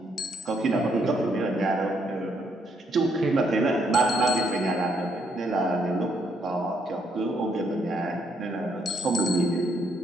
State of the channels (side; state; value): both; normal; correlation 0.73